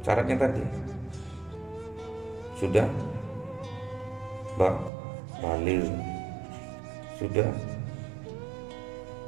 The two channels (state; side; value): drops out; left; at 4.9 s